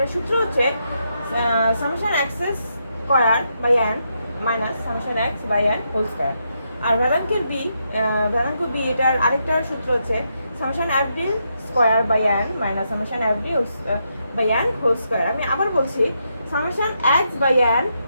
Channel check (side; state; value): both; inverted; correlation -0.81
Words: সূত্র হচ্ছে summation X square by N minus summation X by N whole square. আর ভেদাঙ্ক বি এটার আরেকটা সূত্র হচ্ছে summation F D square by N minus summation F D by N whole square. আমি আবার বলছি, summation x by n